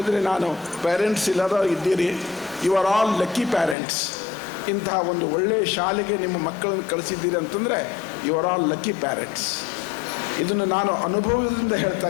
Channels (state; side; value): drops out; right; at 3.8 s